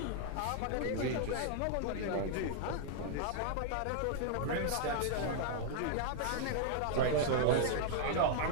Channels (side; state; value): both; different; correlation -0.01